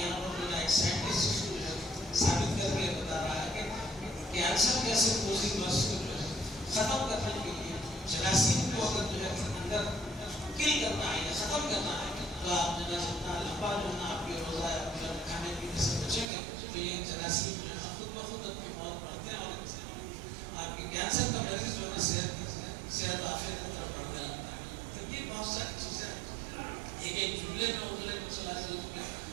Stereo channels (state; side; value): drops out; left; at 16.2 s